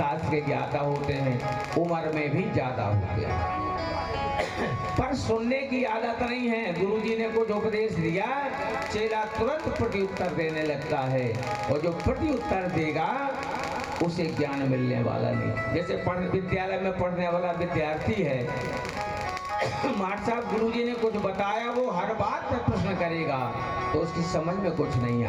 के ज्ञाता होते हैं, उम्र में भी ज्यादा होते हैं, पर सुनने की आदत नहीं है। गुरुजी ने कुछ उपदेश दिया, चेला तुरंत प्रत्युत्तर देने लगता है और जो प्रत्युत्तर देगा उसे ज्ञान मिलने वाला नहीं। जैसे विद्यालय में पढ़ने वाला विद्यार्थी है, मास्टर साहब गुरुजी ने कुछ बताया, वो हर बात पर प्रश्न करेगा तो उसकी समझ में कुछ नहीं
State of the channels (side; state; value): both; identical; correlation 1.00